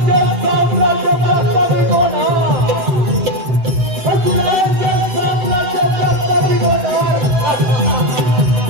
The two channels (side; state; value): left; late; 7.7 ms